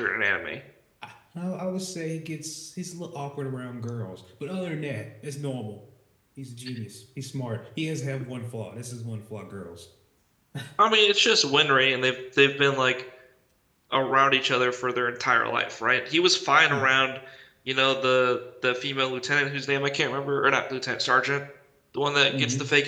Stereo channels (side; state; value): both; identical; correlation 1.00